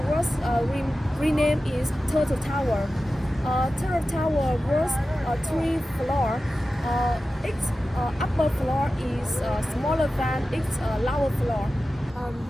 was renamed as Turtle Tower. Turtle Tower was 3 floors. Its upper floor is smaller than its lower floor.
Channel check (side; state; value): both; normal; correlation 0.94